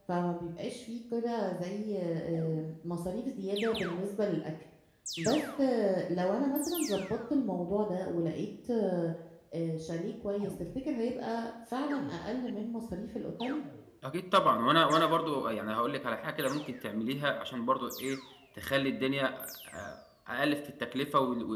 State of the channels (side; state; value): both; identical; correlation 1.00